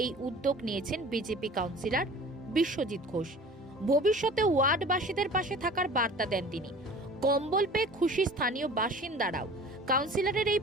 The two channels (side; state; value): both; normal; correlation 0.43